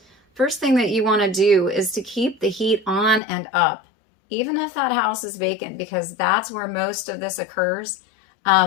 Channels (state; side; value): drops out; right; at 3.2 s